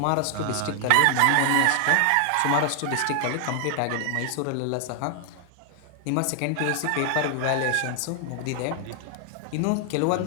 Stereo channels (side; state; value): both; different; correlation 0.00